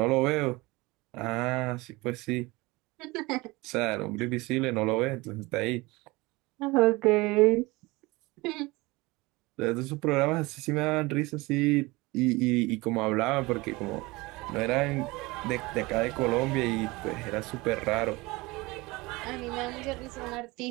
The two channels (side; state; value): left; quieter; 22.7 dB